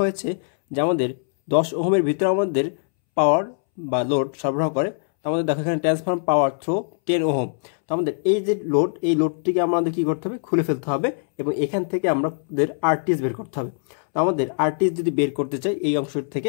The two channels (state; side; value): silent; right; 64 dB below the other